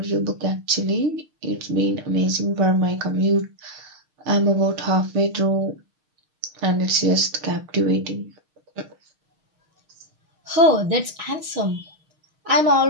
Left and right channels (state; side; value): late; left; 6.5 ms